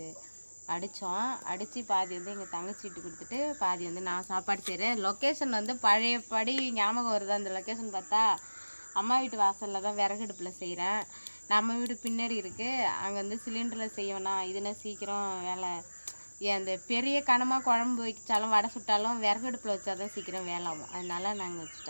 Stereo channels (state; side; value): inverted; both; correlation -1.00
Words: அடித்து பாதி வந்து எங்கள் தங்கச்சி வீட்டு கொடுத்துட்டு பாதி வந்து நான் சாப்பாடு செய்கிறேன். லொக்கேஷன் வந்து பழையபடி ஞாபகம் வருது. அந்த லொக்கேஷன் பார்த்தா அம்மா வீட்டு வாசலில் தான் விறகடுப்பில் செய்கிறேன். நம்ம வீடு பின்னாடி இருக்குது. அங்கே வந்து சிலிண்டரில் செய்யணும். இதுனா சீக்கிரம் வேலை. அந்த பெரிய கனமாக குழம்பு வச்சாலும் வடை சுட்டாலும் விறகடுப்பில் வச்சா தான் சீக்கிரம் வேலை ஆகும். அதனால நாங்கள்